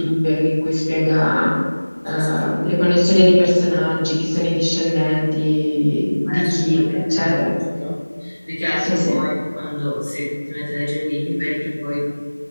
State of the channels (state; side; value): inverted; both; correlation -1.00